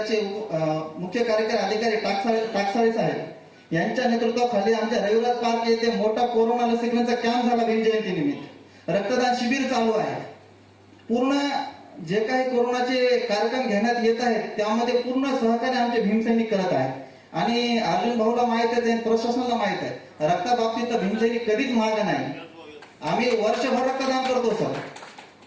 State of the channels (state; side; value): identical; both; correlation 1.00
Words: मुख्य कार्यकारी अधिकारी टाकसाळे साहेब यांच्या नेतृत्वाखाली आमच्या रविराज पार्क येथे मोठा कोरोना लसीकरणाचा कॅम्प झाला. भीम जयंती निमित्त रक्तदान शिबिर चालू आहे. पूर्ण जे काही कोरोनाचे कार्यक्रम घेण्यात येत आहेत त्यामध्ये पूर्ण सहकार्य आमचे भीमसैनिक करत आहेत. आणि अर्जुन भाऊला माहित आहे, प्रशासनाला माहित आहे, रक्ताबाबतीत भीमसैनिक कधीच मागे नाही. आम्ही वर्षभर रक्तदान करतो सर.